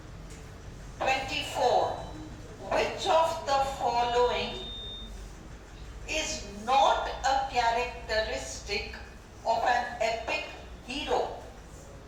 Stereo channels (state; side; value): identical; both; correlation 1.00